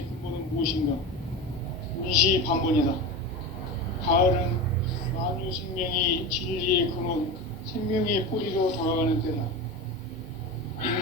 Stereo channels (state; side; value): normal; both; correlation 0.25